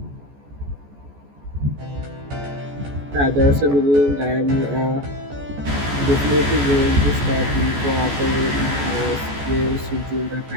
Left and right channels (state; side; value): late; left; 14 ms